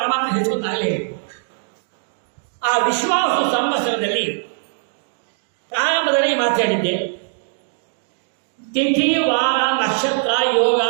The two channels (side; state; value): left; silent; digital silence